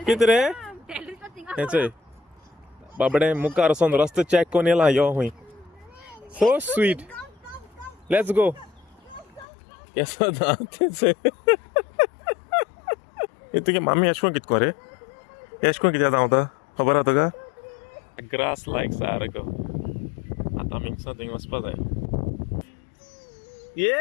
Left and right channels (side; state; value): right; drops out; at 9.5 s